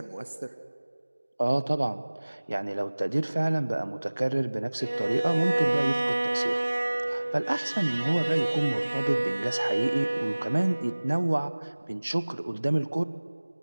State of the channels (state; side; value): inverted; both; correlation -1.00